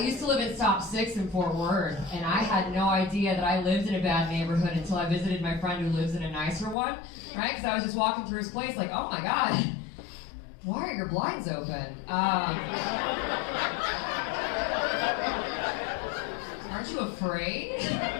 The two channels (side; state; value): right; drops out; at 6.8 s